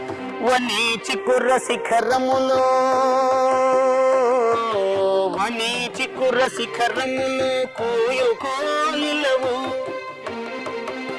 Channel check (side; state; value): both; identical; correlation 1.00